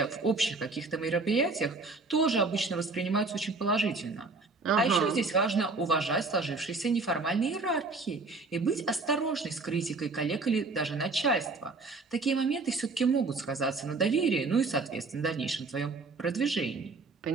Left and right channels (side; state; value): left; quieter; 3.7 dB